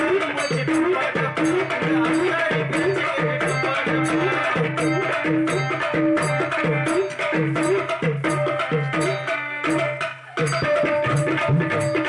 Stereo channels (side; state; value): both; identical; correlation 1.00